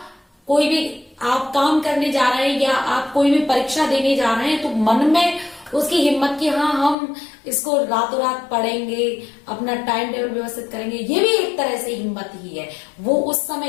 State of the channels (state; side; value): drops out; right; at 7.0 s